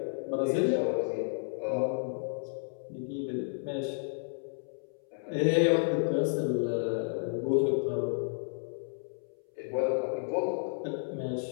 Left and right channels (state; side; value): silent; right; 57 dB below the other